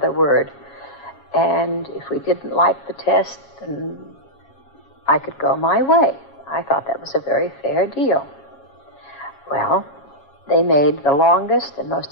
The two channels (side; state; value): right; late; 7.2 ms